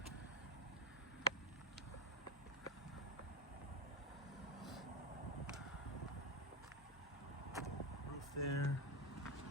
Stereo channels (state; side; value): normal; both; correlation 0.08